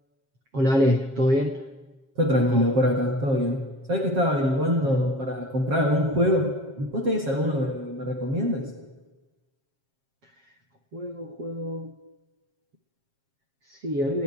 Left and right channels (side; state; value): left; late; 7.4 ms